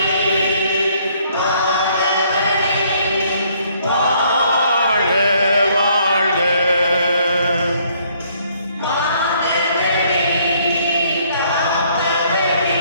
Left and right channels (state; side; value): inverted; both; correlation -0.65